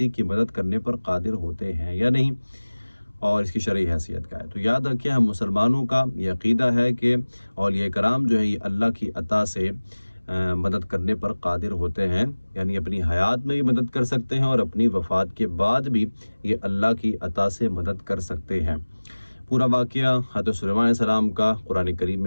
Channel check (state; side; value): inverted; both; correlation -1.00